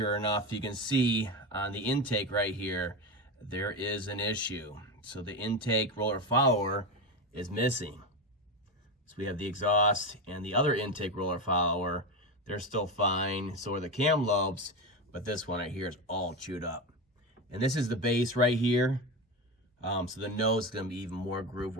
enough, you can see on the intake right here, there is an issue. So the intake roller follower is missing. So we have the exhaust and the other intake roller follower. They're still fine. So are the cam lobes, but this one right here is all chewed up. And this is the base right here. So the nose is going to be even more grooved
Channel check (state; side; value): normal; both; correlation 0.18